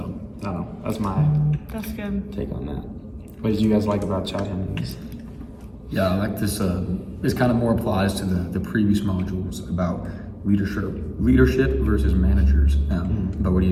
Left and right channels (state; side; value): identical; both; correlation 1.00